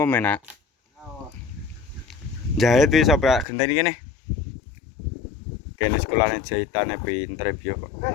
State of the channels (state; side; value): drops out; right; at 3.5 s